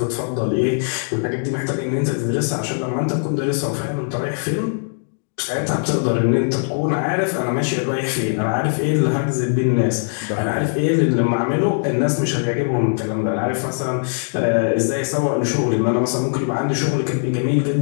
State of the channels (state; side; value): silent; right; digital silence